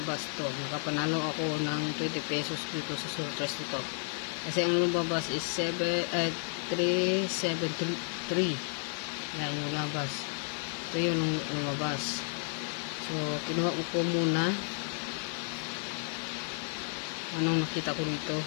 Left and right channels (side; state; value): right; silent; 56 dB below the other